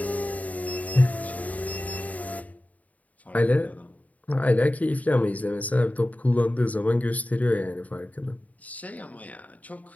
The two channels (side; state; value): right; late; 0.072 ms